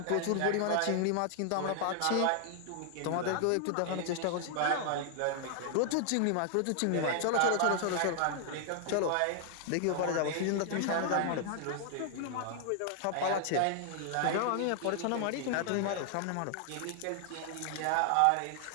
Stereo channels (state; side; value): different; both; correlation 0.00